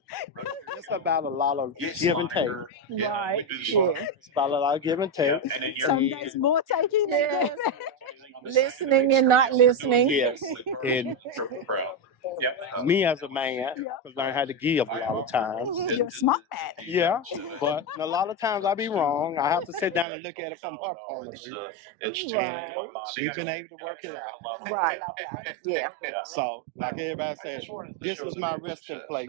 it's about a lot of give and take. Right. It's about a lot of give and take. Some days more taking than giving. Listening and not listening. Yes. And me as a man, I've learned how to give a lot of times. You're a smart man. Yeah, but a lot of times I be wrong. I have to sit down and look at it from her point of view. And we've been able to work it out. I love that. Yeah. So, like everybody says, this is my resting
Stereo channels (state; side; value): drops out; left; at 20.1 s